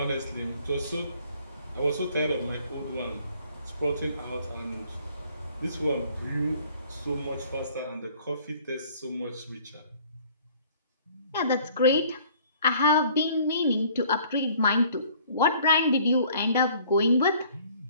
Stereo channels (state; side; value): inverted; both; correlation -0.56